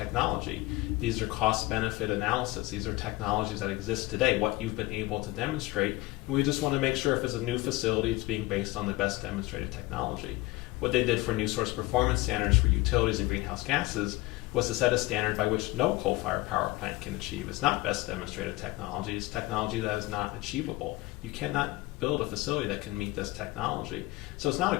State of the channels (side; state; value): right; quieter; 20.2 dB